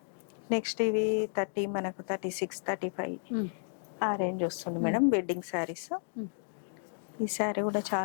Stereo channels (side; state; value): right; silent; digital silence